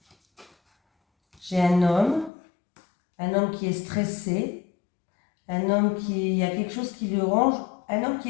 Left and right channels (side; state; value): right; drops out; at 2.3 s